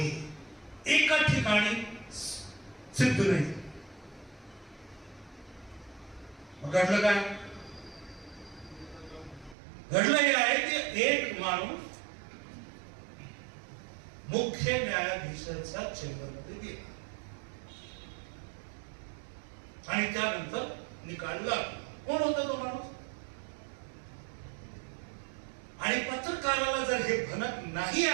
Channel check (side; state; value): left; drops out; at 9.6 s